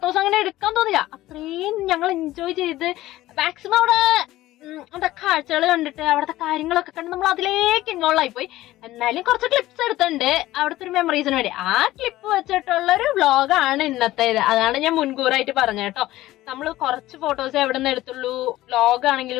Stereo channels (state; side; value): quieter; right; 16.1 dB